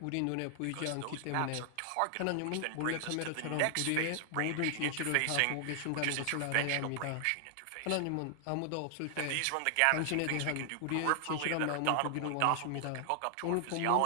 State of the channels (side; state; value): both; different; correlation 0.00